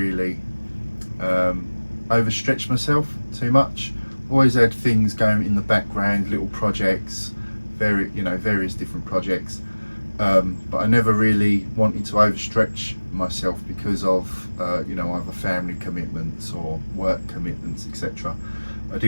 overstretched myself too much. Always had things going in the background, little projects, various different projects. But I never really wanted to overstretch myself because of either family commitments or work commitments, etc. I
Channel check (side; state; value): both; inverted; correlation -1.00